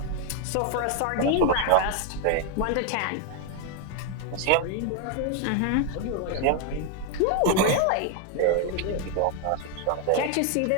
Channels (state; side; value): different; both; correlation 0.01